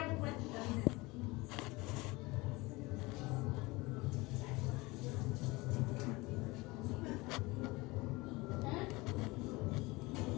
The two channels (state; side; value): quieter; right; 22.8 dB